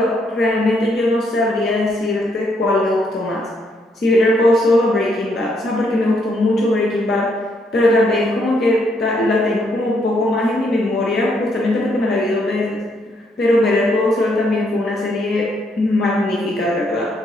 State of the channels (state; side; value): normal; both; correlation 0.73